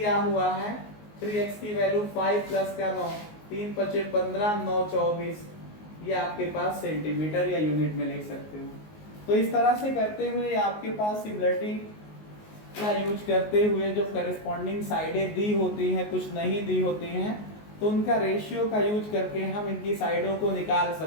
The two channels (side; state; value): right; late; 19 ms